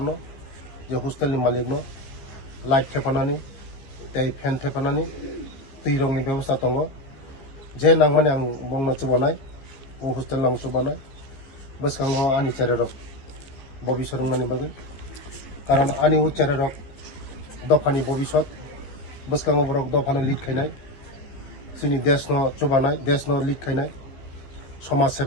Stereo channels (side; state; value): right; late; 15 ms